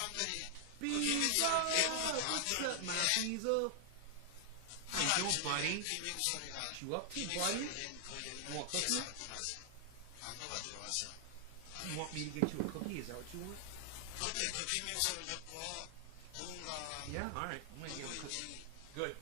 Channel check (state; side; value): different; both; correlation 0.00